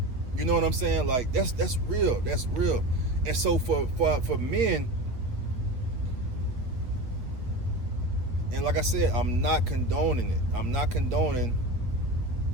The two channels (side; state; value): left; late; 8.4 ms